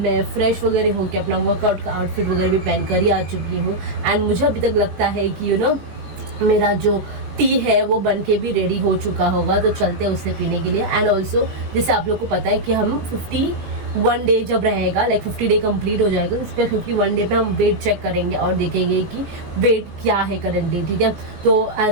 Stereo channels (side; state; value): left; late; 18 ms